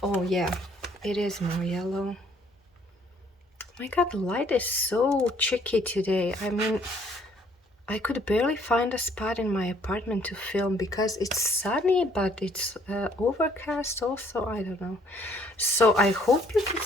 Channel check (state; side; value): normal; both; correlation 0.63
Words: Oh yeah, it is more yellow. My god, the light is so tricky today. I mean, I could barely find a spot in my apartment to film because it's sunny, but it's overcast also. I don't know. So I hope you can